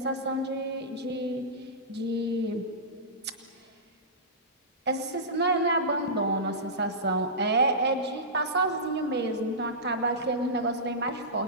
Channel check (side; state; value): both; normal; correlation -0.18